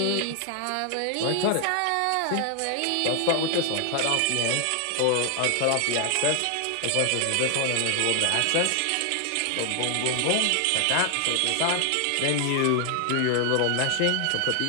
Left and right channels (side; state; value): both; different; correlation 0.00